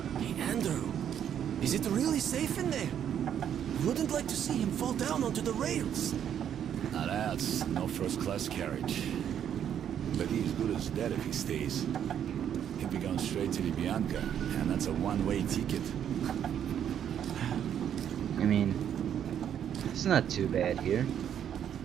Hey, Andrew. Is it really safe in there? Wouldn't like to see him fall down onto the rails. Now that's no first-class carriage. But he's good as dead if he stays. He'll be going straight to the Bianca, and that's a one-way ticket. I mean, it's not too bad here.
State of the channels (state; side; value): quieter; left; 9.3 dB